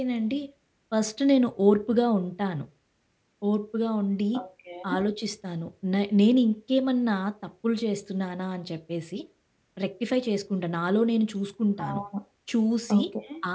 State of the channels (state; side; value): identical; both; correlation 1.00